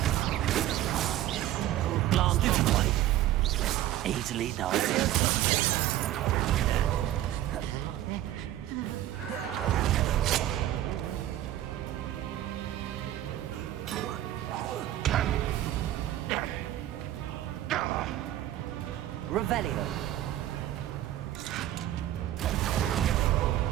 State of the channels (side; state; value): left; quieter; 13.4 dB